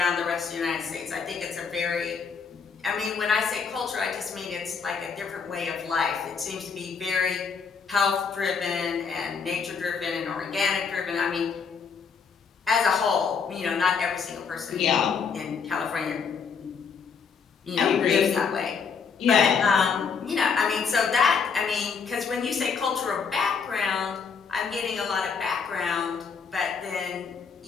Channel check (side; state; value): right; quieter; 5.8 dB